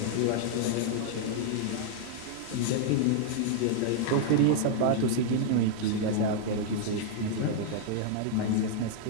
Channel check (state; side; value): different; both; correlation 0.00